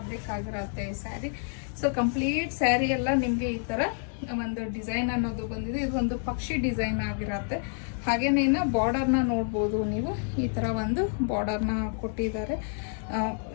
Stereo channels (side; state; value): right; silent; 59 dB below the other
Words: ಆಗಿರುತ್ತೆ ಈ ಸ್ಯಾರಿ. ಸೊ ಕಂಪ್ಲೀಟ್ ಸ್ಯಾರಿ ಎಲ್ಲ ನಿಮಗೆ ಈ ತರ ಒಂದು ಡಿಸೈನ್ ಅನ್ನೋದು ಬಂದಿದೆ. ಇದು ಒಂದು ಪಕ್ಷಿ ಡಿಸೈನ್ ಆಗಿರುತ್ತೆ. ಹಾಗೇನೇನ ಬಾರ್ಡರ್ನ ನೋಡ್ಬೋದು ನೀವು, ಈ ತರ ಒಂದು ಬಾರ್ಡರ್ನ ಕೊಟ್ಟಿದ್ದಾರೆ.